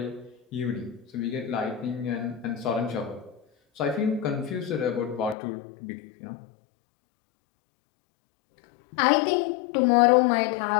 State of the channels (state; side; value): drops out; right; at 5.4 s